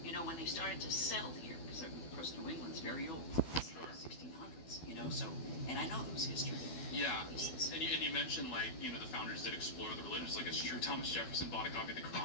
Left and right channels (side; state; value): right; late; 12 ms